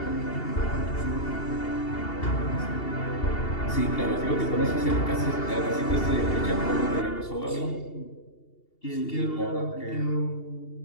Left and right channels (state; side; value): late; right; 2.8 ms